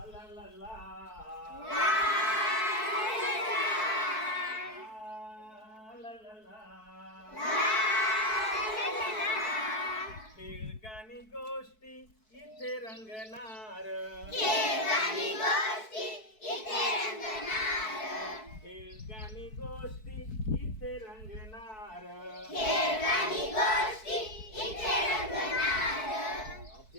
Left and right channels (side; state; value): right; late; 4.6 ms